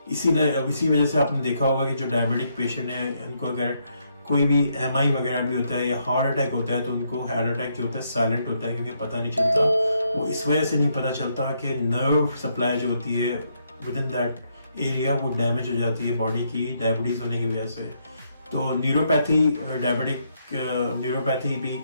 इसी वजह से आपने देखा होगा कि जो डायबिटिक पेशेंट है उनको अगर कोई भी एमआई वगैरह भी होता है या हार्ट अटैक होता है तो उनको हार्ट अटैक जो होता है साइलेंट होता है, क्योंकि पता नहीं चलता। वो इस वजह से नहीं पता चलता कि नर्व सप्लाई जो होती है विद इन दैट एरिया वो डैमेज हो जाती है बॉडी की डायबिटीज होने की वजह से। तो न्यूरोपैथी, डायबिटिक न्यूरोपैथी भी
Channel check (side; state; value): both; inverted; correlation -0.76